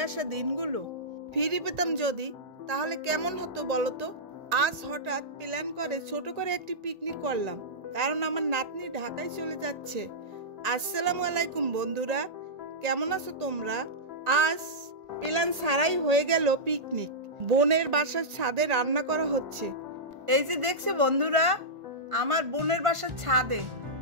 আসা দিনগুলো ফিরে পেতাম যদি, তাহলে কেমন হতো বলতো। আজ হঠাৎ প্ল্যান করে ছোট করে একটি পিকনিক করলাম, কারণ আমার নাতনি ঢাকায় চলে যাচ্ছে। আসসালামু আলাইকুম বন্ধুরা, কেমন আছো তোমরা? আজ প্ল্যান ছাড়াই হয়ে গেল পিকনিক। বোনের বাসার ছাদে রান্না করা হচ্ছে। এই যে দেখছো বন্ধুরা, আমার বোনের বাসার ছাদে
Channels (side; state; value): left; late; 1.8 ms